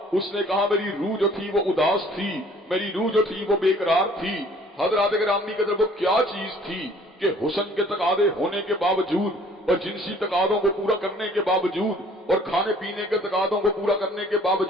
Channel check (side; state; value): both; normal; correlation 0.55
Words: اس نے کہا میری روح جو تھی وہ اداس تھی، میری روح جو تھی وہ بے قرار تھی۔ حضرات گرامی کی طرف وہ کیا چیز تھی کہ حسن کے تقاضے ہونے کے باوجود اور جنسی تقاضوں کو پورا کرنے کے باوجود اور کھانے پینے کے تقاضوں کو پورا کرنے کے